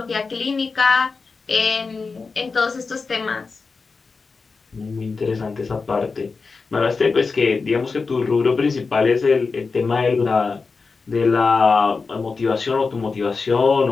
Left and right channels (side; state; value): right; quieter; 4.5 dB